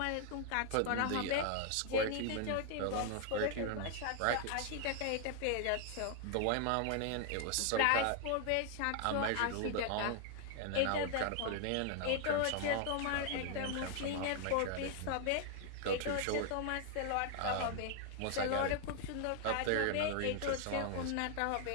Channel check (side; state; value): both; different; correlation 0.00